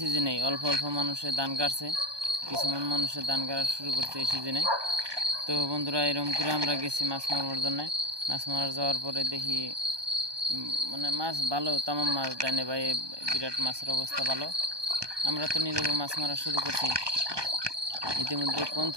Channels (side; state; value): left; late; 1.2 ms